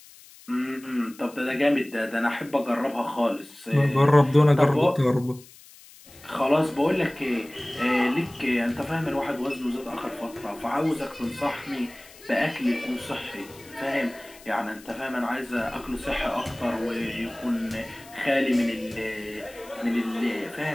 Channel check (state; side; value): noise; left; hiss, 22 dB below the sound